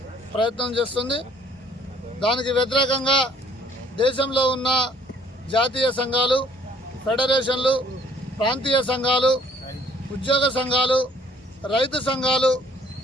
ప్రయత్నం చేస్తుంది. దానికి వ్యతిరేకంగా దేశంలో ఉన్న జాతీయ సంఘాలు, ఫెడరేషన్లు, ప్రాంతీయ సంఘాలు, ఉద్యోగ సంఘాలు, రైతు సంఘాలు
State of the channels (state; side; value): normal; both; correlation 0.59